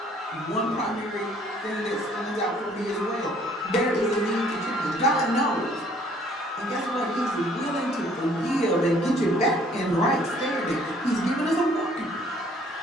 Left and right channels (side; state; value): both; normal; correlation 0.59